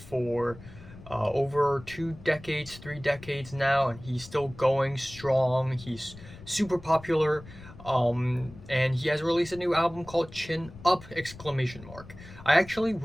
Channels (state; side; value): noise; left; rumble, 18 dB below the sound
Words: over 2 decades, 3 decades now, and he's still going strong. He's super popular. And he has released a new album called Chin Up! Exclamation mark. I actually